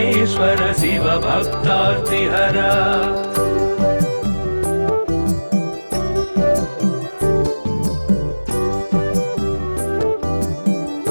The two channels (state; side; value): inverted; both; correlation -1.00